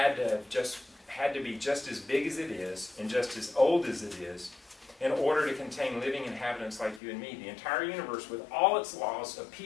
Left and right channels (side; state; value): right; drops out; at 7.0 s